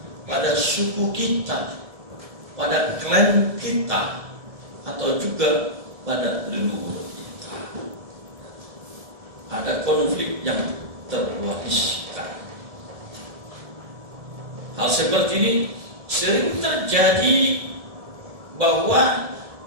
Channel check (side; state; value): left; late; 1.7 ms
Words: pada suku kita, pada klan kita, atau juga pada leluhur kita. Ada konflik yang terwariskan. Hal seperti ini sering terjadi bahwa